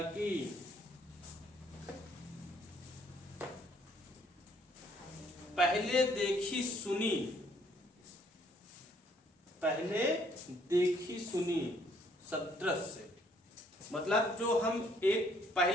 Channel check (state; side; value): normal; both; correlation 0.65